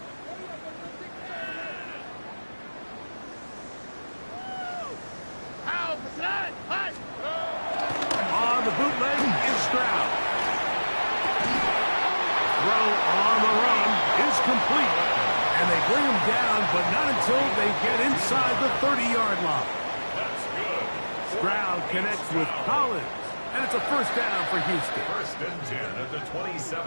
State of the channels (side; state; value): both; inverted; correlation -1.00